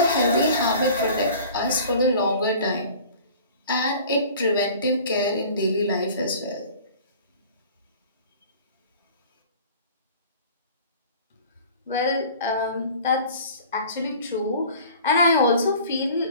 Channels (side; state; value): both; inverted; correlation -0.45